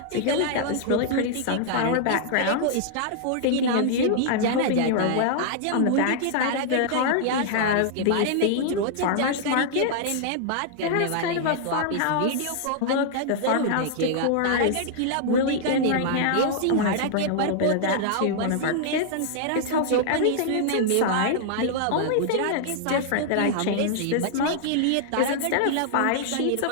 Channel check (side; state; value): both; different; correlation -0.01